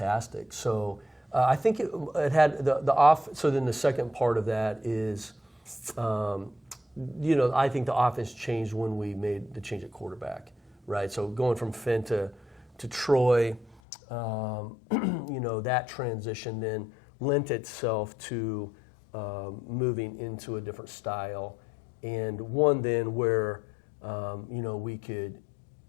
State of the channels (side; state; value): right; drops out; at 13.8 s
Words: So I think it had the off. So then the second part of that is, you know, I think the offense changed when we made the change at quarterback, right? So going from Finn to Troy, you know, that transition then lent itself to moving into a different style, and one then where you know, we could